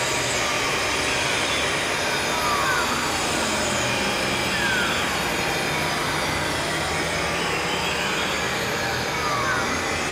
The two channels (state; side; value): identical; both; correlation 1.00